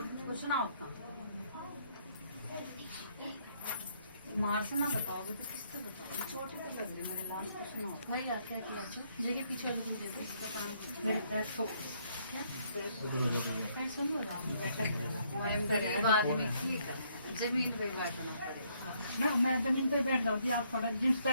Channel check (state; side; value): inverted; both; correlation -0.70